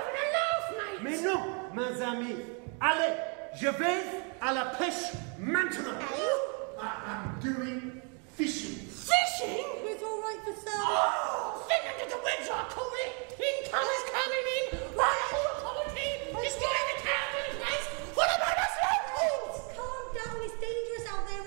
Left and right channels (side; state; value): left; quieter; 36.1 dB